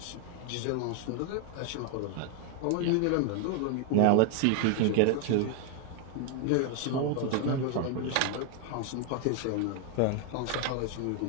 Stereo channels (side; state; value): both; different; correlation 0.01